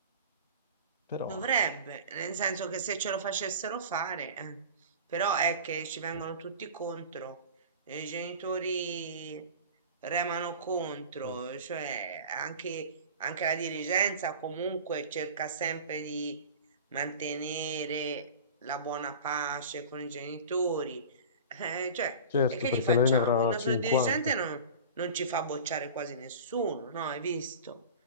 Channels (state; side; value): inverted; both; correlation -0.35